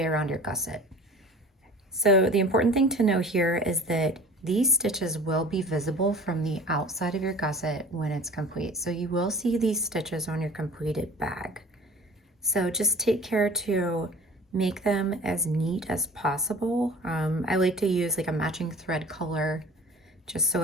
around your gusset. So the important thing to know here is that these stitches will be visible from the outside of your gusset when it's complete. So you will see these stitches on your completed bag. So just take care to make them as neat as possible. I like to use like a matching thread color just so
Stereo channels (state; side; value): normal; both; correlation 0.43